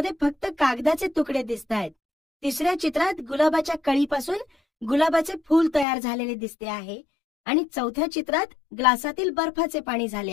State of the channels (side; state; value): right; drops out; at 5.9 s